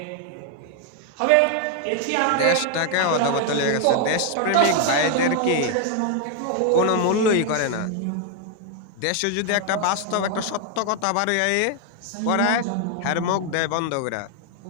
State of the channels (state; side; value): different; both; correlation 0.00